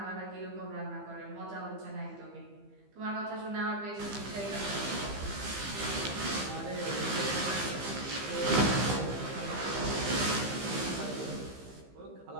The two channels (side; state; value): left; late; 15 ms